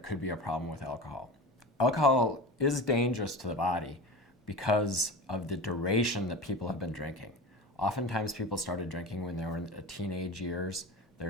could be a problem with alcohol. Alcohol is dangerous to the body because of the duration that people have been drinking. Oftentimes people started drinking when they were in the teenage years. They're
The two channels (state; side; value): normal; both; correlation 0.30